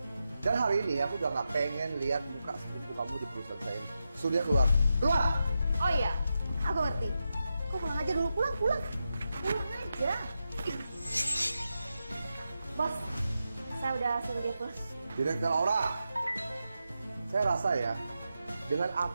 Dan hari ini aku udah nggak pengen lihat muka sepupu kamu di perusahaan saya ini. Sudah keluar. Keluar! Oh iya, aku ngerti. Kok pulang aja dulu, pulang. Pulang aja. Ih. Bos, saya udah suruh dia pulang. Direktur Aura, saya rasa ya, dengan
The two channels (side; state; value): both; inverted; correlation -0.88